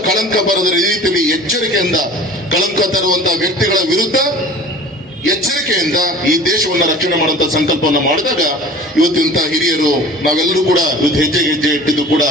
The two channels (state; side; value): normal; both; correlation 0.42